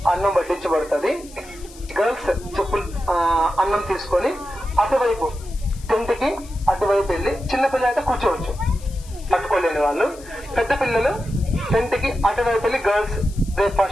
అన్నం వడ్డించబడుతుంది. గర్ల్స్ చెప్పులు అన్నం తీసుకొని అటువైపు టెంట్కి అటువైపు వెళ్ళి, చిన్న పిల్లలు అయితే కూర్చోవచ్చు పట్టుకోలేని వాళ్ళు. పెద్ద పిల్లలు టెంట్కి అటువైపు వెళ్ళి గర్ల్స్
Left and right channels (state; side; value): noise; left; hiss, 21 dB below the sound